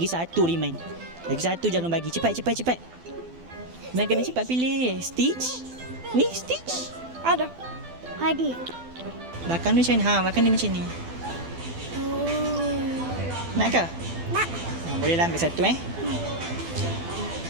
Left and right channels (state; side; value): late; left; 12 ms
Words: 1 Iman. Lagi 1 jangan bagi. Cepat. Iman kena cepat pilih. Stitch? Ni Stitch? Ada. Belakang dia macam ni. Belakang dia macam ni. Nak ke? Nak. Bolehlah ambil satu